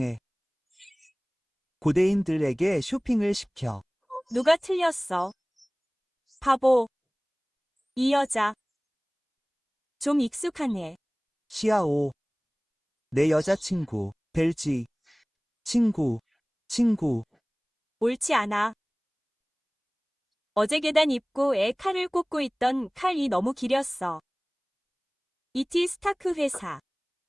고대인들에게 쇼핑을 시켜. 누가 틀렸어? 바보. 이 여자. 좀 익숙하네. 시아오. 내 여자친구. 벨지. 친구. 옳지 않아. 어제 계단 입구에 칼을 꽂고 있던 칼이 너무 길었어. 이티 스타크 회사.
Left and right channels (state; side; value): identical; both; correlation 1.00